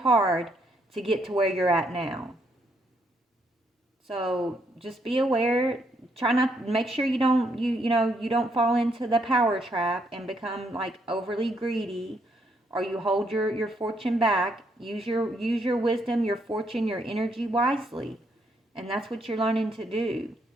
to get to where you're at now. So just be aware. Try not, make sure you don't fall into the power trap and become like overly greedy, or you hold your fortune back. Use your wisdom, your fortune, your energy wisely. And that's what you're learning to do.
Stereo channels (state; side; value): normal; both; correlation 0.73